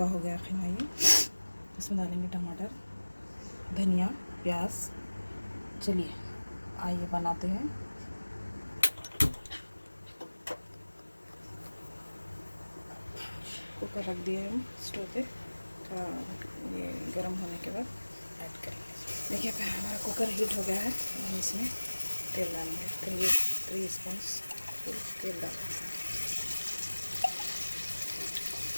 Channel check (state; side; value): inverted; both; correlation -1.00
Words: हो गया कीमा ये। इसमें डालेंगे टमाटर, धनिया, प्याज। चलिए आइए बनाते हैं। कुकर रख दिए हम स्टोव पे, थोड़ा ये गर्म होने के बाद ऐड करेंगे। देखिए हमारा कुकर हीट हो गया है। हम इसमें तेल डालेंगे, 3 स्पून तेल डालेंगे।